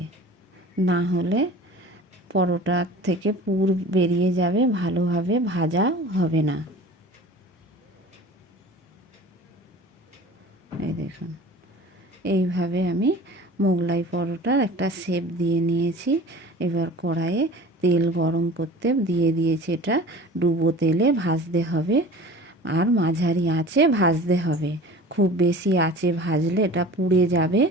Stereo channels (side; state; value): both; normal; correlation 0.41